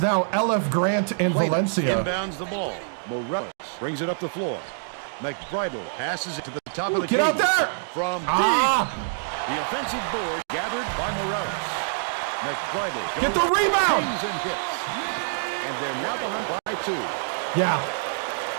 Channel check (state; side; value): silent; left; digital silence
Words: LF Grant in Valencia. Inbounds the ball. Morales brings it up the floor. McBridle passes it to the top of the Get key. out there! From deep. The offensive board gathered by Morales. McBridle goes, Get the rebound! and hits. And they're now behind by 2. Yeah.